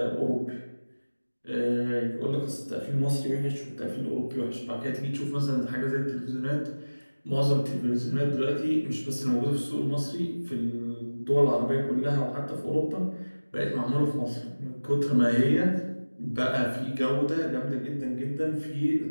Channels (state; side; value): inverted; both; correlation -1.00